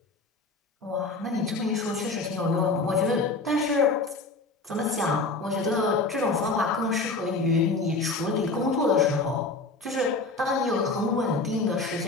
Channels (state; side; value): quieter; right; 3.5 dB